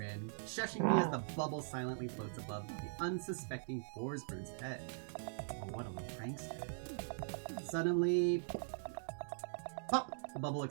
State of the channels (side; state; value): left; silent; digital silence